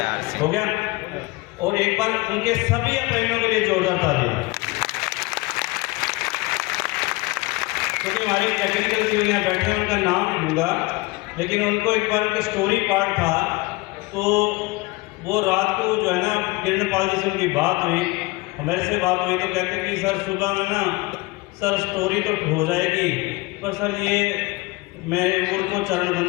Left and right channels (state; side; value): quieter; right; 23.8 dB